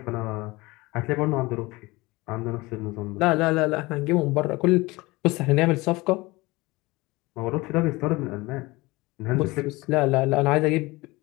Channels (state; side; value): quieter; right; 22.2 dB